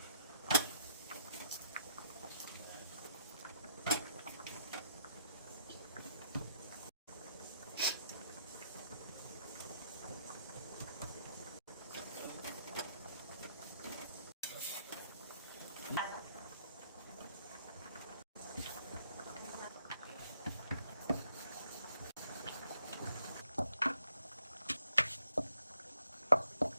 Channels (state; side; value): inverted; both; correlation -0.72